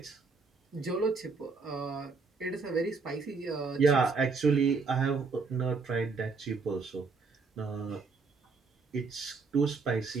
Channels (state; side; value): quieter; left; 4.5 dB